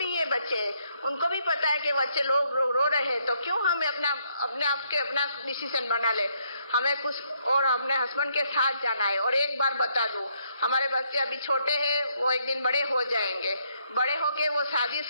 ये बच्चे, उनको भी पता है कि बच्चे लोग रो रहे हैं, तो क्यों हमें अपने आप के अपना डिसीजन बना ले। हमें कुछ और अपने हस्बैंड के साथ जाना है। और एक बार बता दूं, हमारे बच्चे अभी छोटे हैं, वो एक दिन बड़े हो जाएंगे, बड़े होके वो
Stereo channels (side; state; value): both; inverted; correlation -0.73